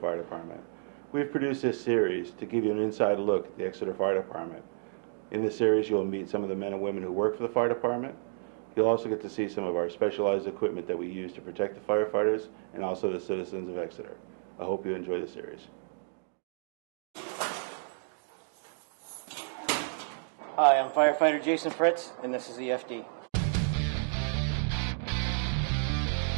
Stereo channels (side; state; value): left; silent; digital silence